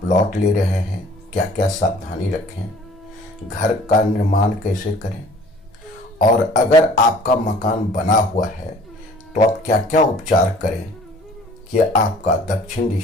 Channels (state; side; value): normal; both; correlation 0.51